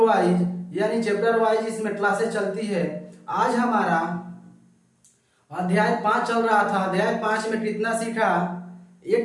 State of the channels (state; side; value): identical; both; correlation 1.00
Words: यानी चैप्टर वाइज इसमें क्लासेस चलती है। आज हमारा अध्याय 5 चल रहा था। अध्याय 5 में कितना सीखा,